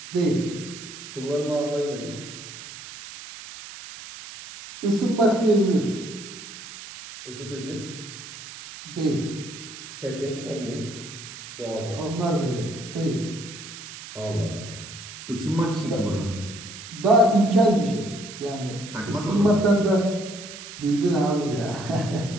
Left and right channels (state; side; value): noise; right; hiss, 13 dB below the sound